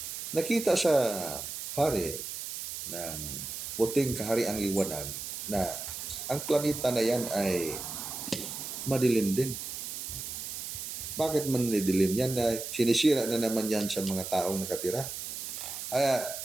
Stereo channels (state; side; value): noise; right; hiss, 6 dB below the sound